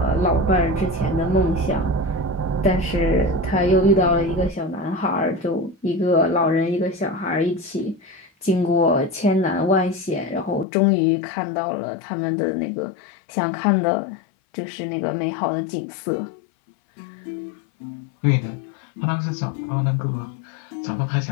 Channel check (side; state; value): right; drops out; at 10.7 s